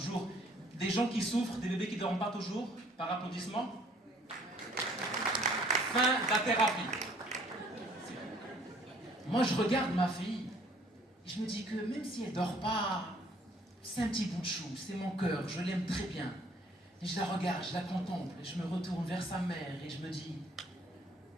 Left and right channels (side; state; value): both; normal; correlation 0.59